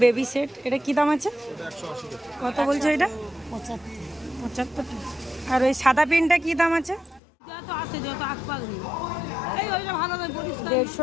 baby set. এটা কি দাম আছে? কত বলছো এটা? 75 টাকা। আর ওই সাদা পেনটা কি দাম আছে? 150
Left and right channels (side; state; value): right; drops out; at 7.2 s